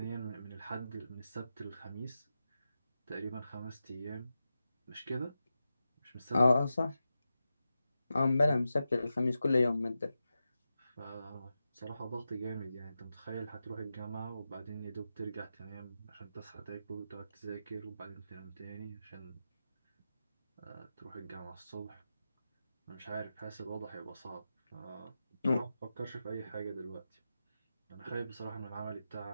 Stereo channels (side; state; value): both; inverted; correlation -0.90